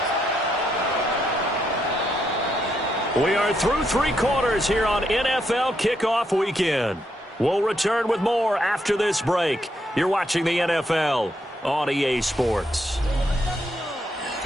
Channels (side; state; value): both; normal; correlation 0.78